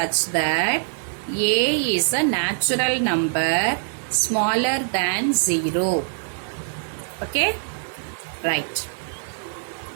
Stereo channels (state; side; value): silent; left; digital silence